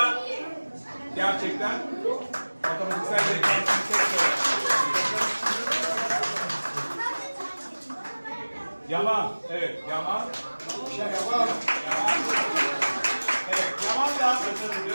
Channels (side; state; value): both; inverted; correlation -1.00